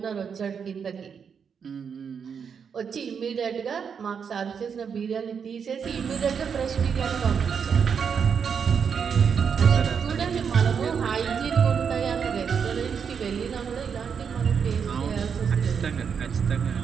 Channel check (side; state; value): left; quieter; 6.8 dB